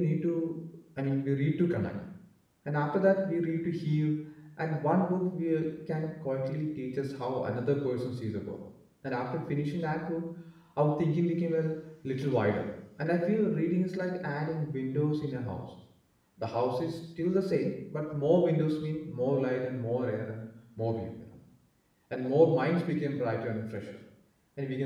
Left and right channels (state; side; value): identical; both; correlation 1.00